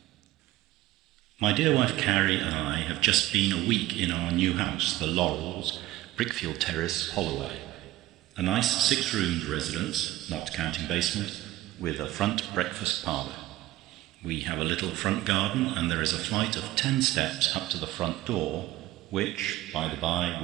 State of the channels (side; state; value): left; quieter; 16.3 dB